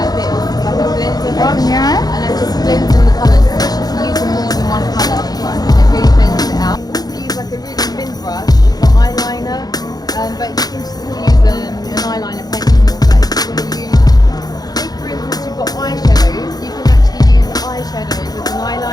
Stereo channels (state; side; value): late; right; 0.19 ms